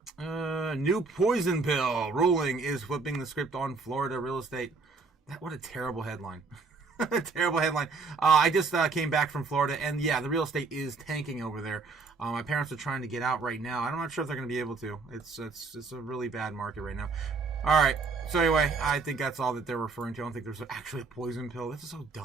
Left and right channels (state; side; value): quieter; left; 4.4 dB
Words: New poison pill ruling is flipping the script on Florida real estate. What a terrible headline. Terrible headline. I just came back from Florida, and the real estate is tanking over there. My parents are trying to get out right now. I'm not sure if they're going to be able to. It's a really bad market right now. All right. So anyway, I think that's all that they're referring to. I don't think there's actually a poison pill. This is so